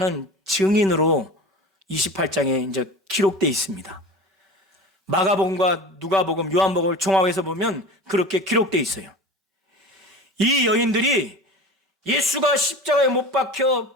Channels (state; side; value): normal; both; correlation 0.34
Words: 증인으로 28장에 이제 기록되어 있습니다. 마가복음과 누가복음, 요한복음을 종합해서 보면 그렇게 기록되어 있어요. 이 여인들이 예수가 십자가에 못 박혀